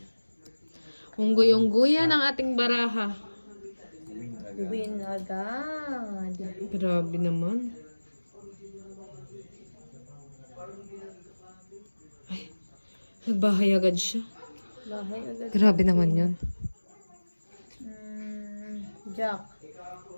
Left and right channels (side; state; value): both; inverted; correlation -1.00